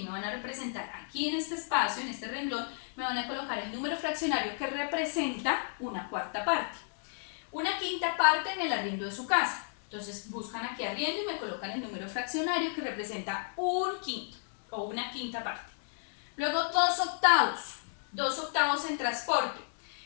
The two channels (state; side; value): silent; right; digital silence